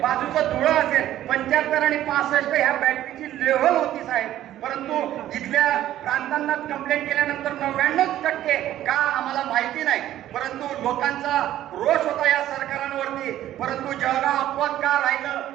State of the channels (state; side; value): quieter; left; 12.9 dB